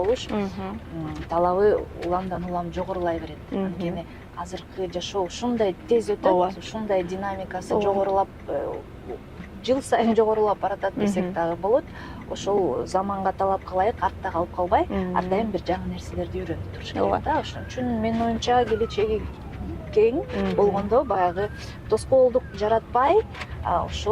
талабы уламдан улам жогорулай берет. Анткени азыркы жашоо ушундай тез өтөт, ушундай динамикасы жогорулап, жыл сайын жогорулап баратат десек дагы болот. Ошол заманга талапка ылайык артта калып калбай, ар дайым бир жаңы нерселерди үйрөнүп туруш керек да. Ошон үчүн менин оюмча келечеги кең болгондо баягы тоскоолдук жаратпай,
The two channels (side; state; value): both; identical; correlation 1.00